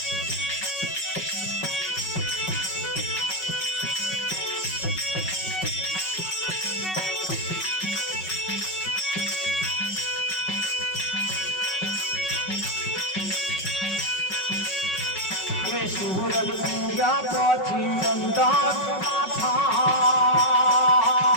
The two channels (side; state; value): right; late; 5.4 ms